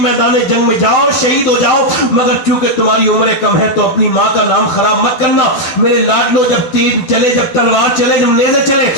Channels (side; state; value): right; late; 12 ms